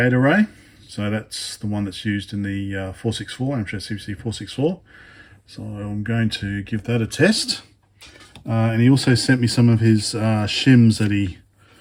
array. So that's the one that's used in the 464, Amstrad CPC 464. So I'm going to give that a test. And he also sent me some of his shims that he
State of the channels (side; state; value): both; identical; correlation 1.00